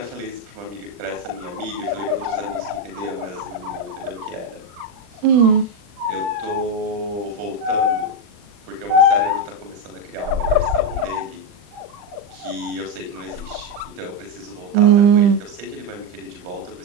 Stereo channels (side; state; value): left; late; 40 ms